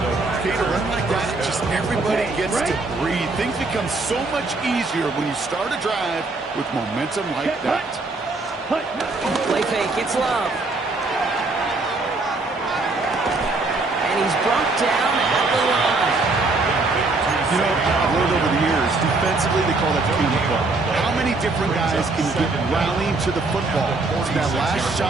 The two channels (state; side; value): quieter; left; 3.4 dB